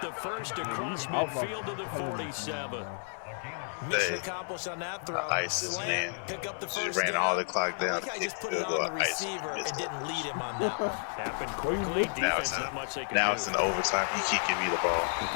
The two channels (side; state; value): right; silent; 55 dB below the other